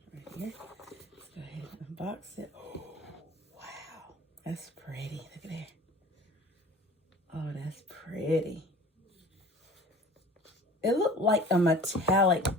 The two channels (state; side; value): normal; both; correlation 0.43